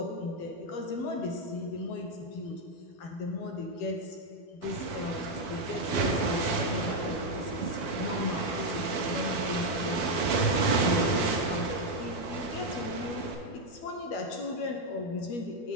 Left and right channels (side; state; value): right; late; 12 ms